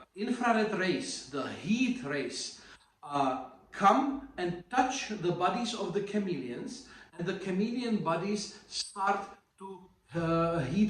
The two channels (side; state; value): both; identical; correlation 1.00